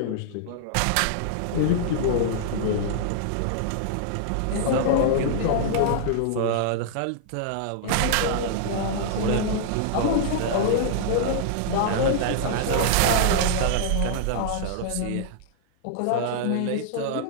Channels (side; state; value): both; different; correlation -0.01